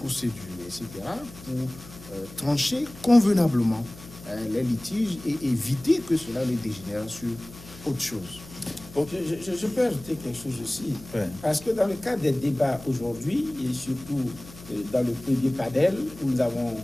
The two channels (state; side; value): noise; left; hum, 18 dB below the sound